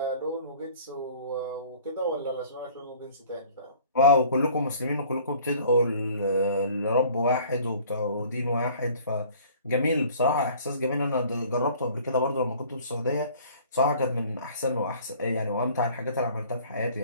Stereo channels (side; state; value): both; inverted; correlation -0.52